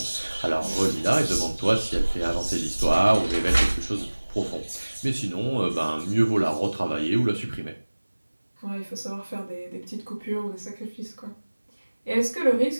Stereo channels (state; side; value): inverted; both; correlation -1.00